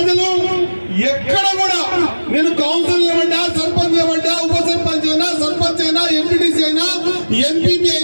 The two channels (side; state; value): both; inverted; correlation -1.00